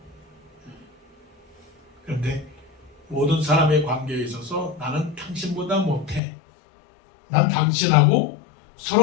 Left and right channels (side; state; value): right; drops out; at 6.2 s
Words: 그런데 모든 사람의 관계에 있어서 나는 당신보다 못해. 난 당신하고